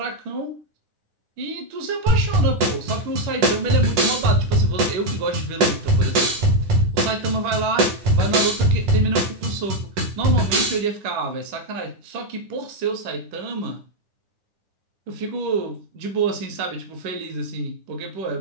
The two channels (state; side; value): late; left; 10 ms